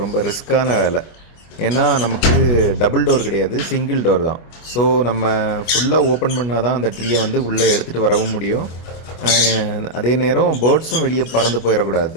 ரிஸ்க்கான வேலை. ஏன்னா நமக்கு டபுள் டோர் கிடையாது, சிங்கிள் டோர் தான். ஸோ நம்ம ஃபுல்லாக ஓப்பன் பண்ணால் தான் அந்த ட்ரீயை வந்து உள்ளே எடுத்துகிட்டு வரவும் முடியும். அதே நேரம் பேர்ட்ஸும் வெளியே பறந்து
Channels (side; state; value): right; late; 25 ms